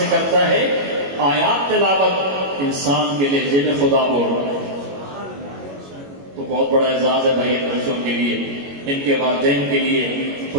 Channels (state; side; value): late; left; 21 ms